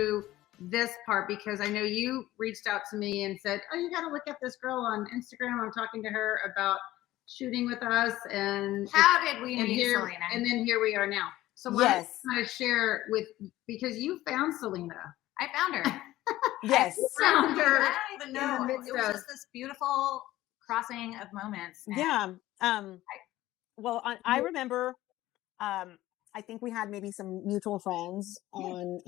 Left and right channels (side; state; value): right; quieter; 15.8 dB